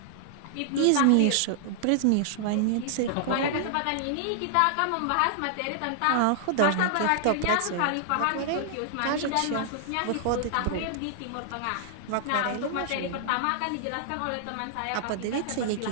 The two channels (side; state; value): both; different; correlation -0.01